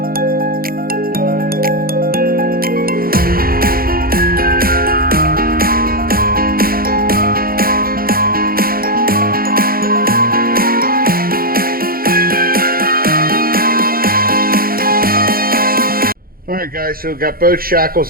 Alright guys, so we've got both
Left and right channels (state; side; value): late; left; 0.43 ms